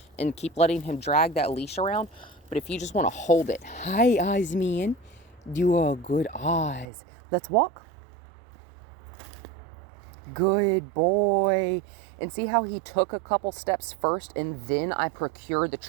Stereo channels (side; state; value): left; drops out; at 6.9 s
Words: and keep letting him drag that leash around, but if you just want to hold it, hi, Oz man, you are good Oz. Let's walk. Good boy. And see how he took a couple steps first and then I procured the